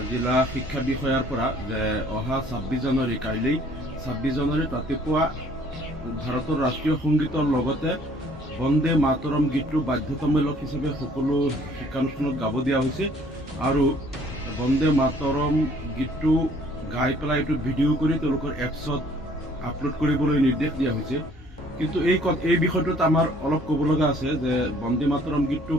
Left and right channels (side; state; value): both; normal; correlation 0.58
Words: জিলা শিক্ষা বিষয়াৰ পৰা যে অহা 26 জানুৱাৰী কাইলৈ 26 জানুৱাৰীত ৰাতিপুৱা ভাৰতৰ ৰাষ্ট্ৰীয় সংগীতৰ লগতে বন্দে মাতৰম গীতটো বাধ্যতামূলক হিচাপে সকলো শিক্ষানুষ্ঠানত গাব দিয়া হৈছে আৰু বন্দে মাতৰম গীতটো গাই পেলাই এইটো ভিডিঅ' কৰি তেওঁলোকৰ এপছত আপলোড কৰিবলৈ নিৰ্দেশ দিয়া হৈছে। কিন্তু এই বিষয়টোত আমাৰ অলপ ক'ব লগা আছে যে বন্দে মাতৰম গীতটো